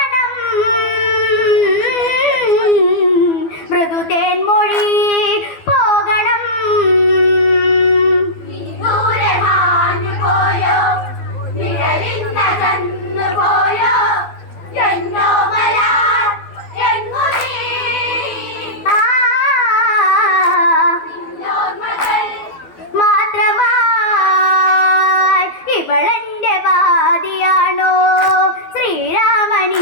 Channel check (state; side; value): late; right; 12 ms